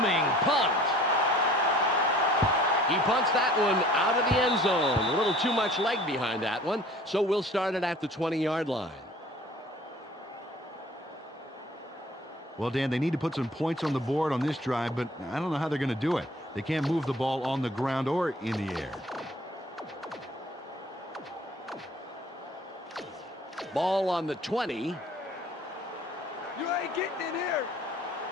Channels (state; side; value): normal; both; correlation 0.50